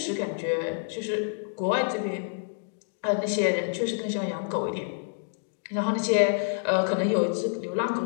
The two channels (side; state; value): right; silent; digital silence